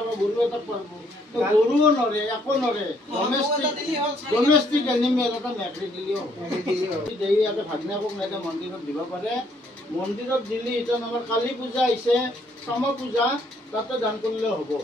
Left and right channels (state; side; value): normal; both; correlation 0.67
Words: বা গৰু এটা পাৰিব তো গৰুও নৰে একো নৰে ডমেষ্টিক এনিমেল এটা মেকৰি দিলেও দেই ইয়াতে ভাগনাকক নাইকে মন্দিৰত দিব পাৰে মন্দিৰত দিলে এতিয়া আমাৰ কালী পূজা আহিছে সম পূজা তাতে দান কৰিলেও হ'ব